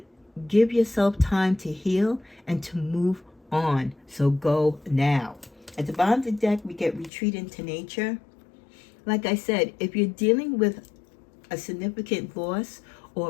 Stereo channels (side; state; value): right; drops out; at 7.1 s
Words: give yourself time to heal and to move on. So go now. At the bottom of the deck, we get retreat into nature. Like I said, if you're dealing with a significant loss